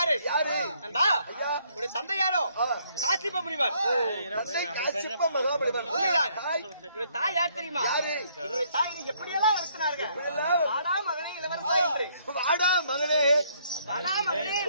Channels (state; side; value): inverted; both; correlation -0.68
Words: நண்பா, உடைய தந்தை யாரோ? காசிப முனிவர். காசிப்ப மகாபலிவர். என்னுடைய தாய் யார் தெரியுமா? என்னுடைய தாய் என்னை எப்படியெல்லாம் வளர்த்தினார்கள். வாடா மகனே இளவரசா என்று. வாடா மகனே, வாடா மகனே